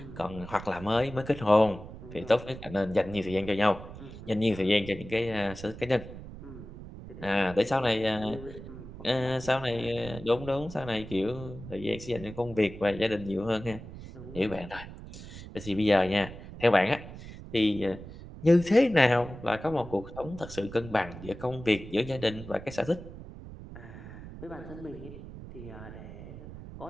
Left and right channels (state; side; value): noise; right; rumble, 13 dB below the sound